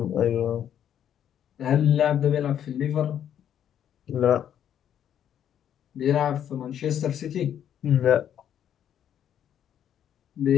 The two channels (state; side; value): quieter; right; 9.8 dB